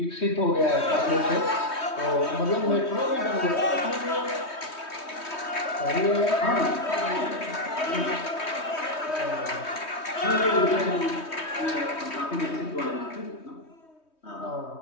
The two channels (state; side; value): late; right; 3.2 ms